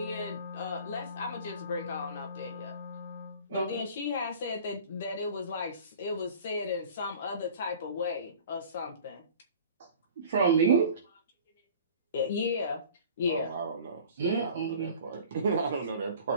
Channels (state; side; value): inverted; both; correlation -0.45